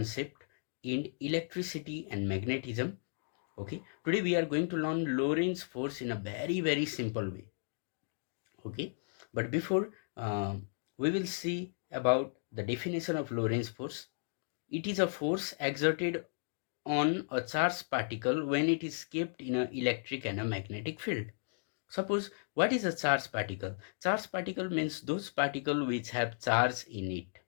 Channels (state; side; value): silent; right; digital silence